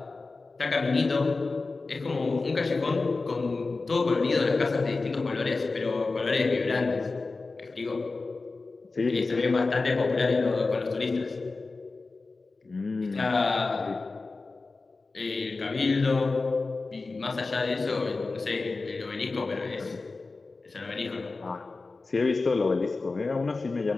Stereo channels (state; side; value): quieter; right; 3.8 dB